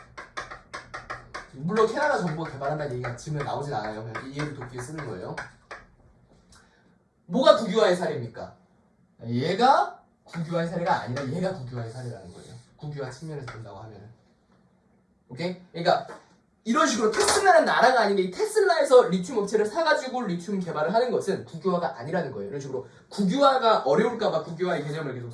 물론 캐나다 정부가 개발한다는 얘기가 지금 나오진 않아요. 그냥 이해를 돕기 위해 쓰는 거예요. 뭐가 국유화의 사례입니까? 얘가 국유화의 사례가 아니라 얘가 국유화의 사례라는 거예요. 국유화 측면에서 본다고 하면은. 오케이? 그러니까 이런 식으로 테슬라는 나라가 아닌데 이 테슬라에서 리튬 업체를 사가지고 리튬 개발을 하는 것은 국유화가 아니라는 거예요. 이런 식으로 국유화가 어려울까봐 국유화의 개념을 계속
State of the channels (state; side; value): identical; both; correlation 1.00